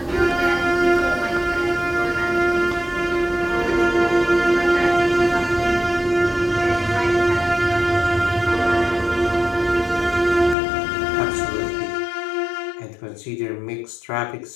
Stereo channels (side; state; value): right; drops out; at 10.6 s